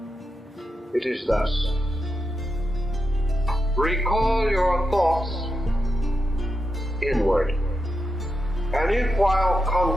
It is thus. Recall your thoughts inward, and if while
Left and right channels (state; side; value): normal; both; correlation 0.87